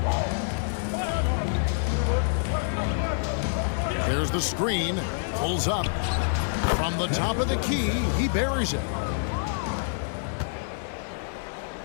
There's the screen, pulls up. From the top of the key, he buries it.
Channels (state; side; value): silent; right; 60 dB below the other